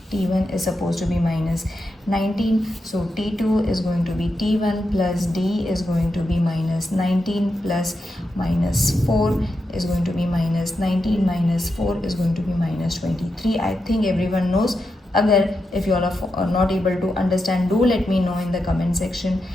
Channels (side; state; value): both; normal; correlation 0.87